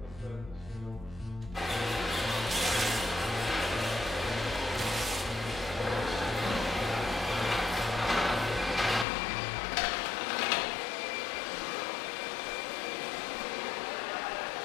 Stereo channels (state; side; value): drops out; right; at 9.1 s